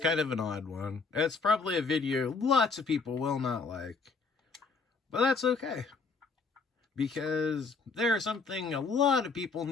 of an odd one. It's probably a video lots of people will not like. But that's okay. Because there's something a lot of people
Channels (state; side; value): quieter; right; 4.5 dB